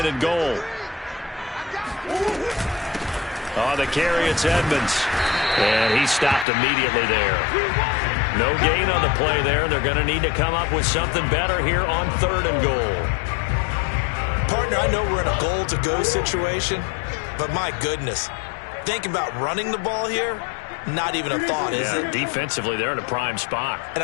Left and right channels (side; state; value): right; drops out; at 6.5 s